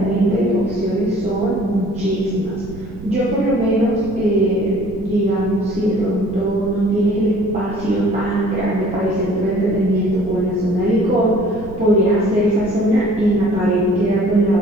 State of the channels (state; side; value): noise; right; rumble, 15 dB below the sound